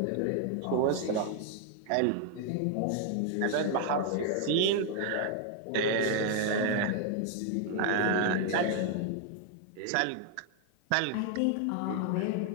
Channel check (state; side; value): different; both; correlation 0.00